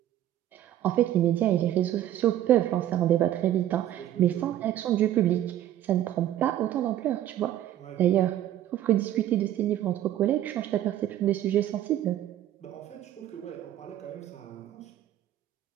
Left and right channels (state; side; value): quieter; left; 12.4 dB